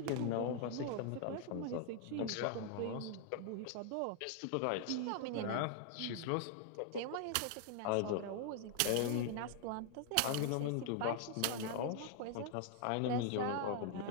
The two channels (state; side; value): different; both; correlation 0.00